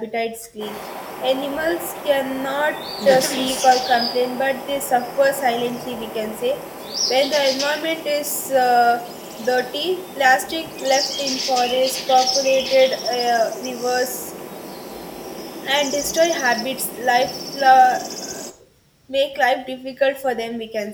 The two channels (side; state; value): both; identical; correlation 1.00